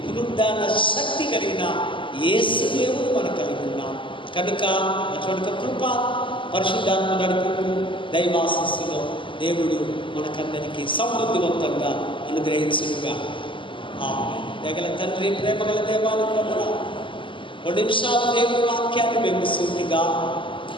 పునరుద్ధాన శక్తి కలిగిన యేసు దేవుడు మనం కలిగి ఉన్నాం. కనుక అటువంటి కృప, పరిశుద్ధాత్మ నడుపుకు, దైవాశీస్సులో దేవుడు మనకందరికీ సమృద్ధివంతంగా అనుగ్రహించుగా. దగల తండ్రి, ప్రేమగల దేవానికి వందనాలు. 2 నిమిషాలు దేవుడి వాక్యాన్ని మేము సూటిగా,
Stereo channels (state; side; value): late; right; 0.25 ms